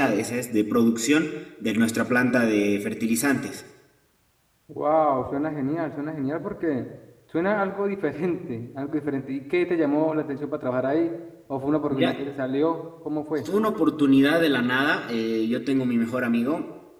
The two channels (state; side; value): identical; both; correlation 1.00